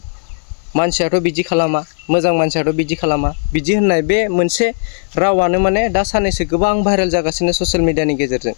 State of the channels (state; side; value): silent; right; digital silence